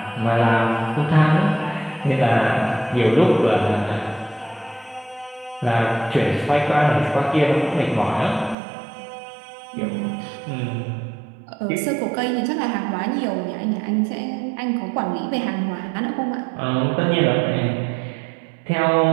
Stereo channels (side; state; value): left; drops out; at 8.6 s